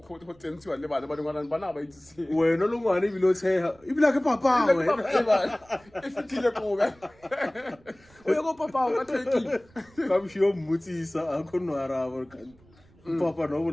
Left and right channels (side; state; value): right; noise; rumble, 28 dB below the sound